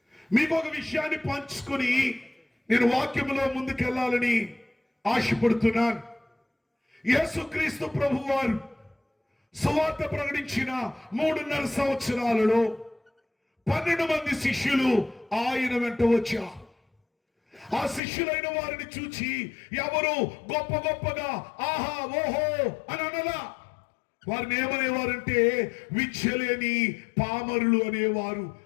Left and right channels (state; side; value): drops out; right; at 18.0 s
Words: మీకు ఒక విషయాన్ని పంచుకొని నేను వాక్యములో ముందుకెళ్లాలని ఆశపడుతున్నాను. యేసుక్రీస్తు ప్రభువారు సువార్త ప్రకటించిన 3.5 సంవత్సరాలలో 12 మంది శిష్యులు ఆయన వెంట వచ్చారు. ఆ శిష్యులైన వారిని చూచి ఎవరు గొప్ప గొప్పగా ఆహా ఓహో అని అనలా. వారిని ఏమనేవారంటే విద్యలేని పామరులు అనేవారు.